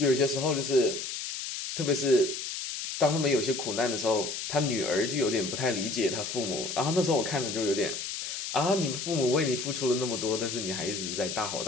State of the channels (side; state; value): left; noise; hiss, 5 dB below the sound